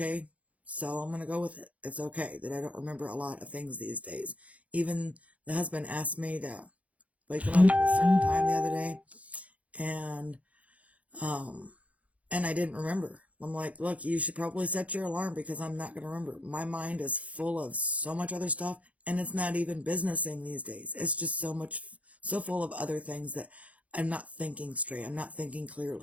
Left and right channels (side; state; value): left; late; 0.067 ms